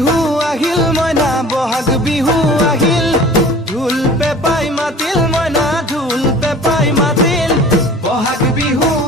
আহিল মইনা বহাগ বিহু আহিল ঢোল পেপাই মাতিল মইনা ঢোল পেপাই মাতিল বহাগ বিহু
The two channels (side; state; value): both; normal; correlation 0.45